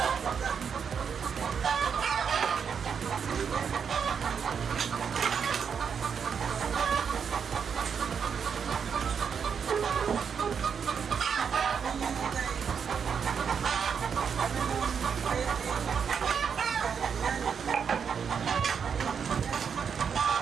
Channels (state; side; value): quieter; left; 6.8 dB